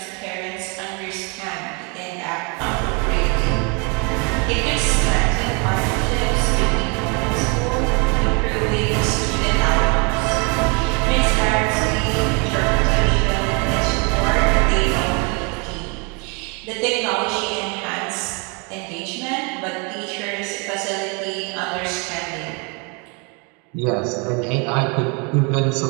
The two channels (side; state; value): left; quieter; 32.7 dB